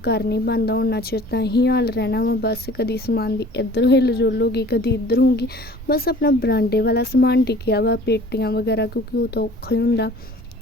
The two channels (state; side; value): normal; both; correlation 0.48